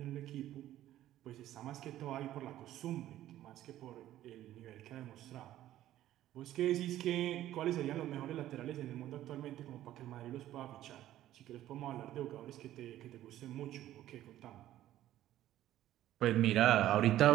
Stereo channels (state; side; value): quieter; left; 13.4 dB